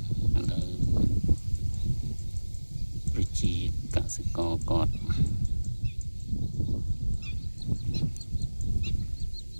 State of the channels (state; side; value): inverted; both; correlation -1.00